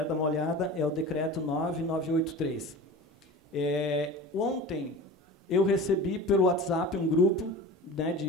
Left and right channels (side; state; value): both; normal; correlation 0.35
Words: dar uma olhada, é o decreto 9983. Ontem, eu recebi pelo WhatsApp um grupo, né,